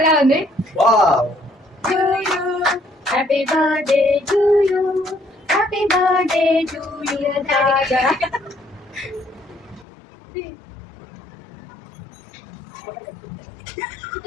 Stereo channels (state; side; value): drops out; right; at 9.9 s